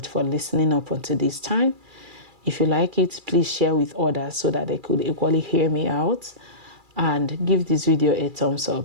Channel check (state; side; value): late; left; 2.3 ms